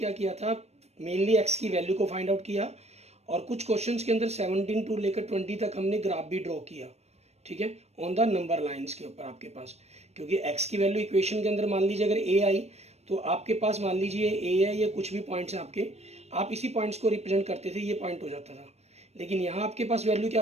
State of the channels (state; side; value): late; left; 0.31 ms